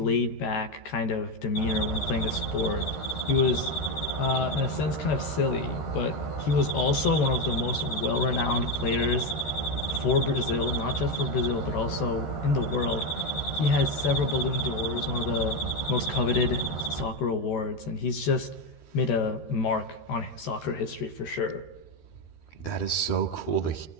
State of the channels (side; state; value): right; late; 13 ms